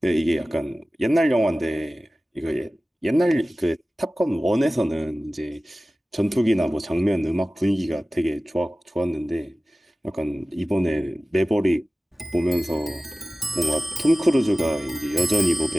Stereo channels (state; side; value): normal; both; correlation 0.96